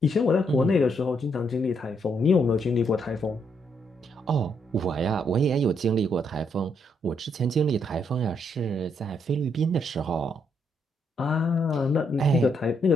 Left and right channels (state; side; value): normal; both; correlation 0.75